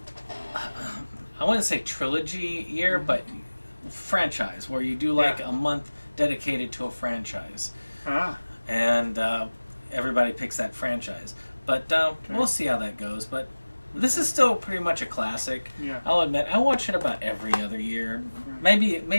I wouldn't say trilogy year, but franchise, where you do like a month dedicated to a franchise. And everybody picks that franchise. But we'll see how that goes. But this is still pretty much a classic. Yeah. I'll admit, I watch it about every other year.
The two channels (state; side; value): inverted; both; correlation -1.00